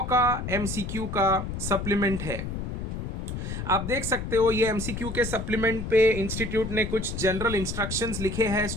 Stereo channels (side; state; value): left; noise; rumble, 5 dB below the sound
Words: का एमसीक्यू का सप्लीमेंट है। आप देख सकते हो ये एमसीक्यू के सप्लीमेंट पे इंस्टीट्यूट ने कुछ जनरल इंस्ट्रक्शंस लिखे हैं